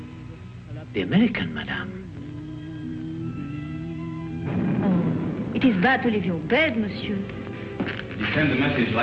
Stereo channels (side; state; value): both; identical; correlation 1.00